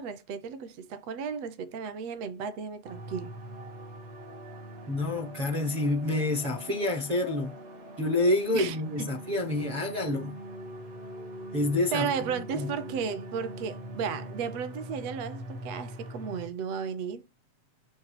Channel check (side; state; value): left; late; 7.2 ms